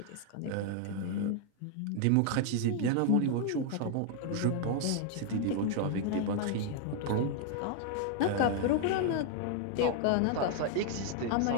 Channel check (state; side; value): different; both; correlation 0.00